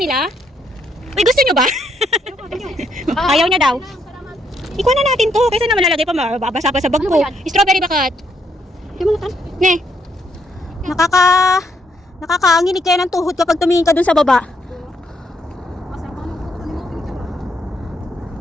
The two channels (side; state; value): both; normal; correlation 0.74